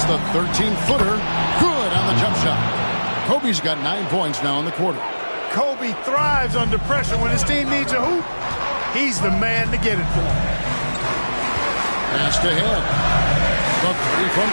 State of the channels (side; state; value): both; inverted; correlation -1.00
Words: the 13-footer. Good on the jump shot. Kobe's got 9 points now in the quarter. Kobe thrives under pressure. When his team needs a hoop, he's the man to get it for him. Pass to head. The 3 from